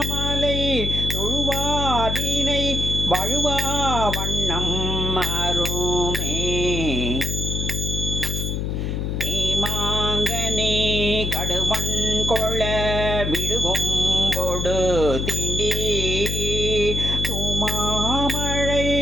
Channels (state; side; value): noise; left; hum, 1 dB below the sound